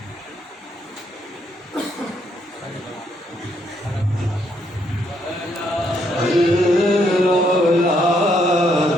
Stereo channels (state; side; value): normal; both; correlation 0.73